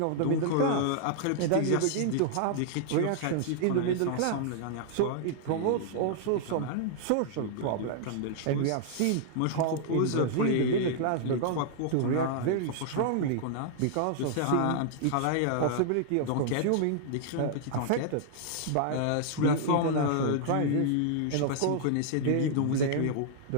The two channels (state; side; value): different; both; correlation -0.01